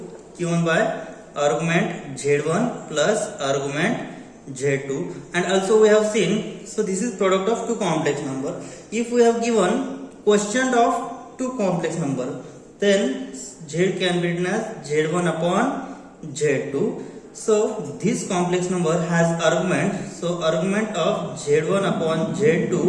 given by argument z1 plus argument z2. And also we have seen, so this is product of two complex number. If we have given quotient of two complex number, then z can be written as z1 upon z2. So this complex number has argument, so argument of z1 upon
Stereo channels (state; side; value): identical; both; correlation 1.00